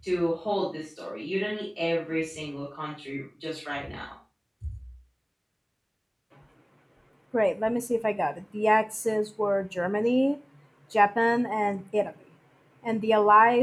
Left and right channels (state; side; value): identical; both; correlation 1.00